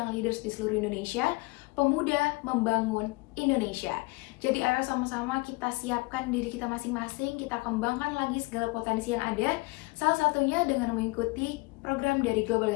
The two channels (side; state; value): right; quieter; 25.2 dB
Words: leaders di seluruh Indonesia. Pemuda membangun Indonesia. Jadi ayo sama-sama kita siapkan diri kita masing-masing, kita kembangkan lagi segala potensi yang ada, salah satunya dengan mengikuti program dari Global